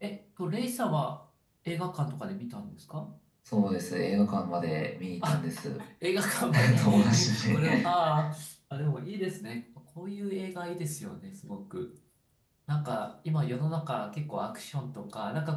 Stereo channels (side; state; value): both; identical; correlation 1.00